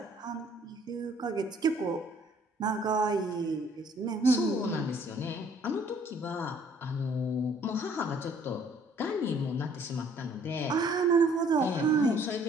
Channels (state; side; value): normal; both; correlation 0.60